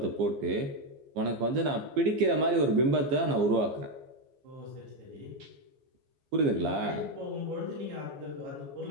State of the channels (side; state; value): left; late; 14 ms